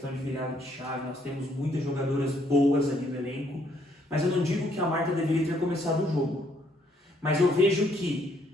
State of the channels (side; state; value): both; normal; correlation 0.69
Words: de virada de chave, nós temos muitas jogadoras boas ali no elenco, mas eu não digo que a Marta deveria ter começado o jogo. Mas eu vejo